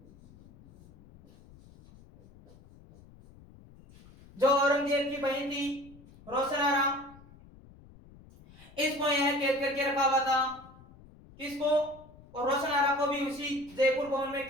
जो औरंगजेब की बहन थी रोशनारा, इसको यह कैद करके रखा हुआ था। किसको? और रोशनारा को भी उसी जयपुर भवन में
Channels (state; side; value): noise; left; rumble, 23 dB below the sound